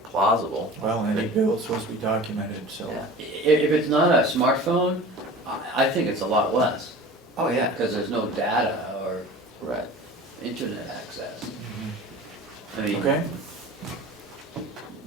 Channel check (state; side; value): normal; both; correlation 0.39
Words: plausible. Well, any bill's supposed to be documented, so. Yeah. If it's not a smartphone, I think it's a lot less, Oh, yeah. because there's no data or Right. internet access. Mhm. I mean, Okay,